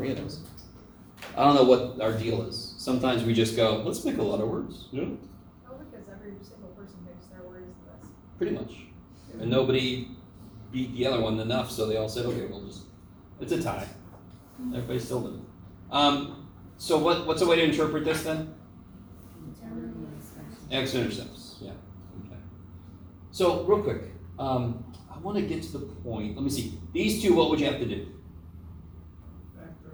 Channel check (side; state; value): both; identical; correlation 1.00